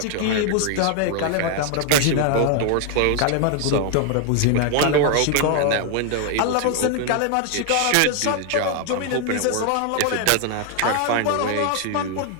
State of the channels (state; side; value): different; both; correlation 0.00